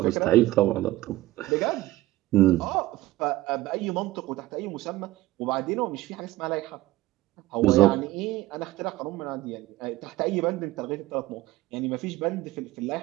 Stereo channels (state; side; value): quieter; left; 17.1 dB